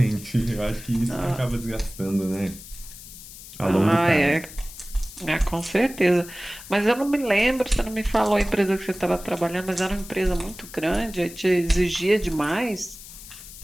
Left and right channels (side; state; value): left; noise; hiss, 16 dB below the sound